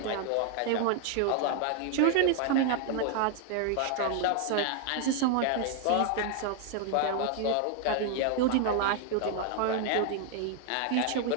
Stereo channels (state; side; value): different; both; correlation 0.00